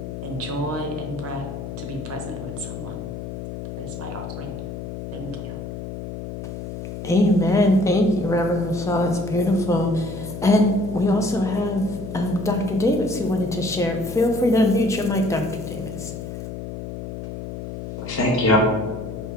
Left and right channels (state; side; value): noise; left; hum, 8 dB below the sound